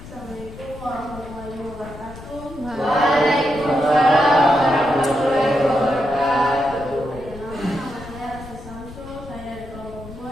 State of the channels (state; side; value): noise; left; rumble, 15 dB below the sound